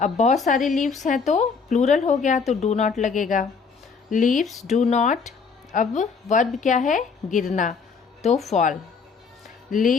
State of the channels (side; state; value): right; quieter; 5.4 dB